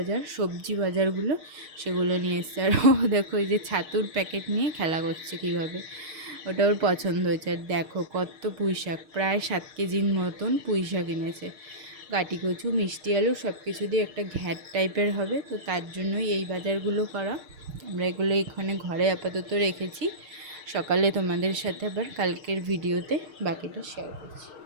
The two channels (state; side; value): late; left; 6.5 ms